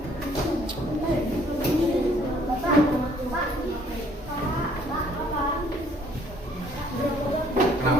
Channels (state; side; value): normal; both; correlation 0.61